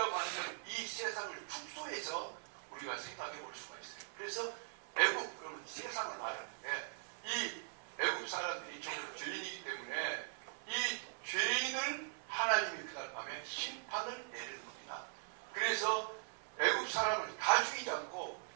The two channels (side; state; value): left; silent; 50 dB below the other